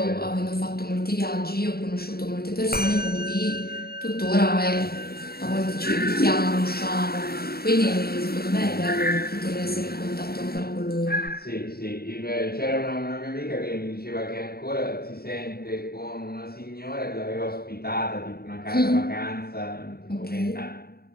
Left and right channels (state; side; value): late; right; 0.45 ms